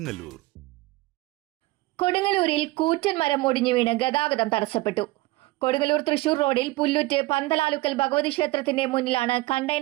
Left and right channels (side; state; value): left; quieter; 19.9 dB